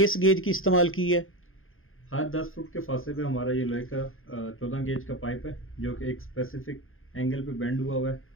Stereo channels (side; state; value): right; late; 0.60 ms